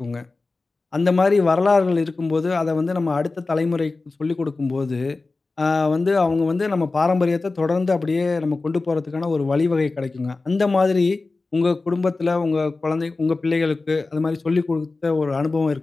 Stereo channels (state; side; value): quieter; right; 3.6 dB